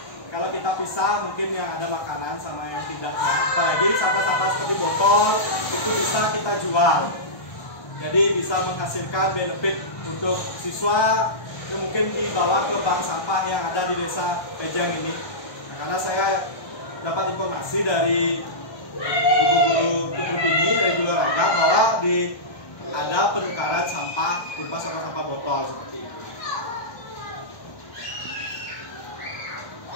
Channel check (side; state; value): right; late; 1.2 ms